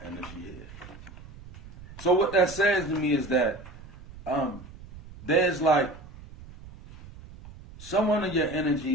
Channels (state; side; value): noise; right; rumble, 17 dB below the sound